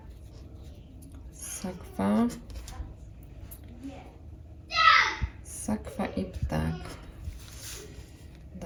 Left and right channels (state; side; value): identical; both; correlation 1.00